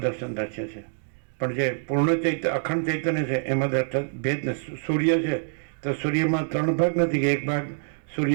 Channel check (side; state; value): left; silent; digital silence